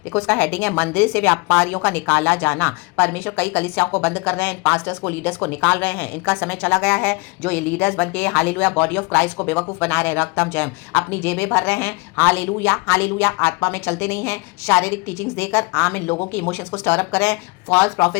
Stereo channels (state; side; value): quieter; right; 27.9 dB